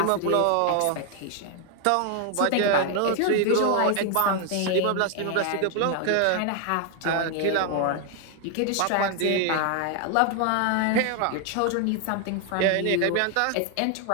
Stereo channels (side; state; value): both; different; correlation 0.00